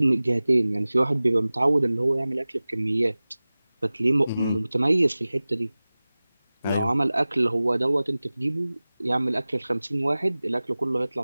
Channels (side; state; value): both; inverted; correlation -0.98